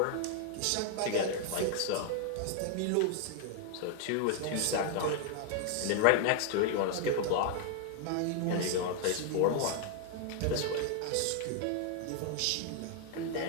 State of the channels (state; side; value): different; both; correlation 0.00